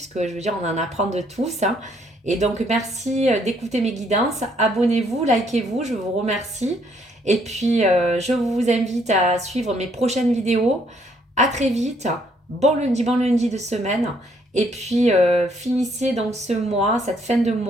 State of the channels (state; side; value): normal; both; correlation 0.68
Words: je veux dire, on en apprend de tous. Hein. Et donc, merci d'écouter mes guidances. Abonnez-vous, likez-vous, je vous remercie. Et puis, je vous invite à suivre mes prochaines vidéos. À très vite. Bon lundi de semaine. Et puis, finissez donc ce mois, cette fin de